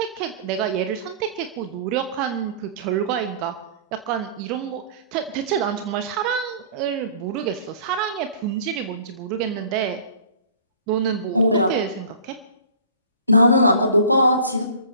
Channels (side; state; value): both; inverted; correlation -0.45